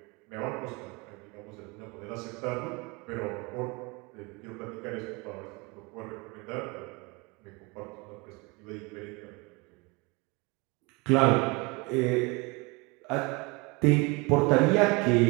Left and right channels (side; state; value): left; quieter; 27.1 dB